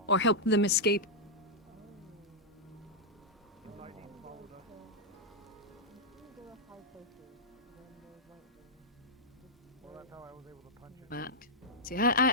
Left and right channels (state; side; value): normal; both; correlation -0.07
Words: Or helped them escape. But, see,